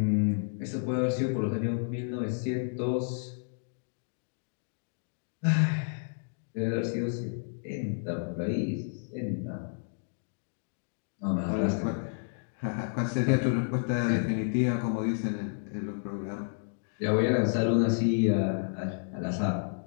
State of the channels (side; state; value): right; silent; digital silence